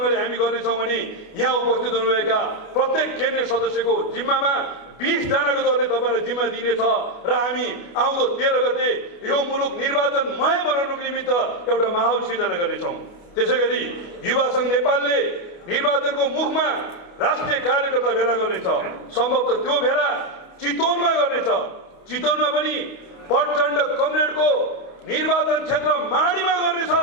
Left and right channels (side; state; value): right; late; 29 ms